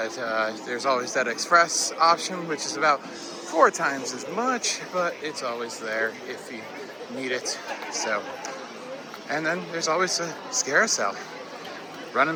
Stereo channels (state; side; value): identical; both; correlation 1.00